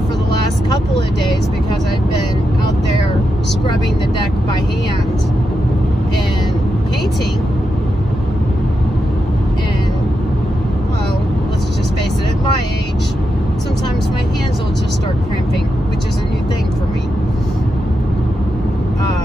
for the last couple of days because I've been out there scrubbing the deck by hand and painting. And, well, let's just face it, at my age, sometimes my hands will just start cramping, which is a new thing for me.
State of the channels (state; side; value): normal; both; correlation 0.86